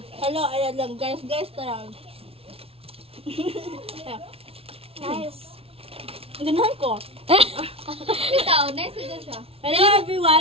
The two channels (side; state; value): left; late; 0.28 ms